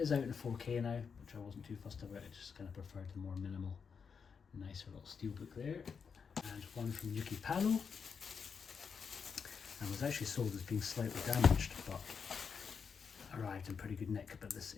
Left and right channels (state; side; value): quieter; right; 6.1 dB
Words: out in 4K now, which I wasn't too fussed about. I just kind of preferred the more minimal, nicer little steelbook there. And one from Yuki Palo, and was actually sold as being slightly damaged, but arrived in pretty good nick. But this